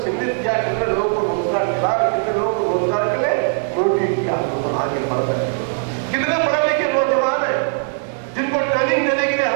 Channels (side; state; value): left; silent; digital silence